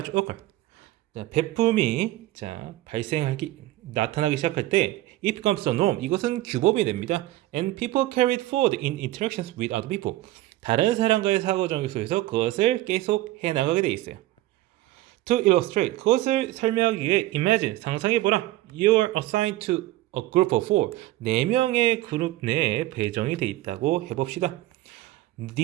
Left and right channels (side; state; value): left; quieter; 16.4 dB